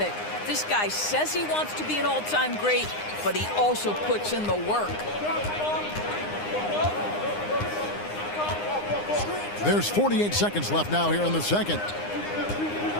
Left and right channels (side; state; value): right; late; 9.7 ms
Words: This guy says he wants to be an all-time great, but he also puts in the work. There's 48 seconds left now here in the second.